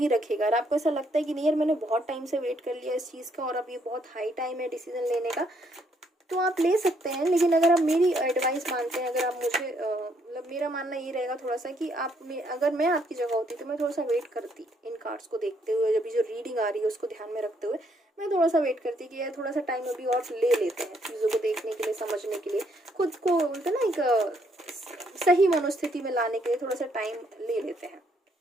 रखेगा। अगर आपको ऐसा लगता है कि नहीं यार मैंने बहुत टाइम से वेट कर लिया इस चीज़ का और अब ये बहुत हाई टाइम है डिसीजन लेने का, तो आप ले सकते हैं। लेकिन अगर आप मेरी एडवाइस मानते हैं, अगर आप मुझे मतलब मेरा मानना ये रहेगा थोड़ा सा कि अगर मैं आपकी जगह होती तो मैं थोड़ा सा वेट करती इन कार्ड्स को देखते हुए, जब जो रीडिंग आ रही है उसको ध्यान में रखते हुए मैं थोड़ा सा वेट करती कि यार थोड़ा सा टाइम अभी और ले लेते हैं चीज़ों को देखने के लिए, समझने के लिए, खुद को बोलते ना एक सही मनोस्थिति में लाने के लिए थोड़ा सा टाइम ले लेते हैं।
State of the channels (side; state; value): both; normal; correlation 0.71